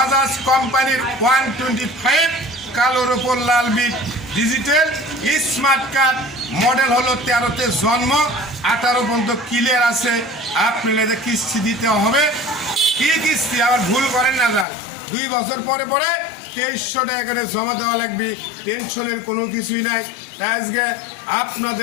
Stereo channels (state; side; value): drops out; right; at 14.7 s